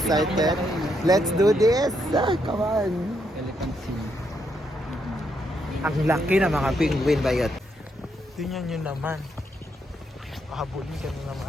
Let's do this. Come on. Ang laki ng mga penguin ba yun? Tingnan nyo naman. Pahabulin ka na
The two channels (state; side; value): normal; both; correlation 0.77